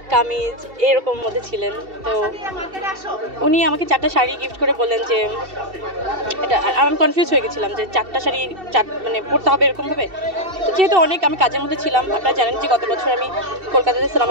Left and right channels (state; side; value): late; left; 2.7 ms